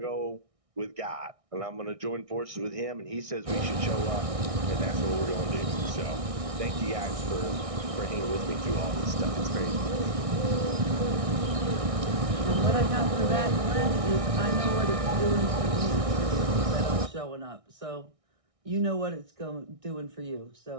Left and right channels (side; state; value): left; late; 1.6 ms